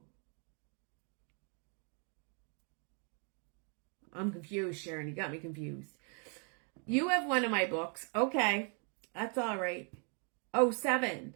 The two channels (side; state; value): left; quieter; 39.1 dB